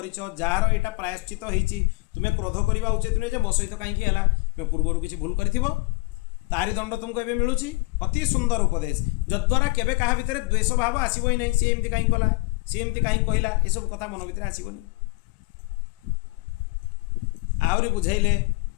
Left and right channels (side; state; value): right; quieter; 25.0 dB